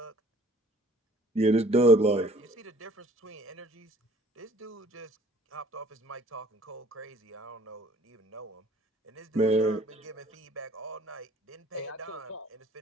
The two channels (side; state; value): both; normal; correlation 0.55